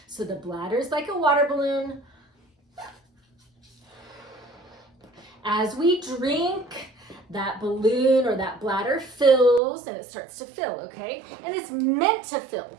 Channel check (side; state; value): left; drops out; at 9.6 s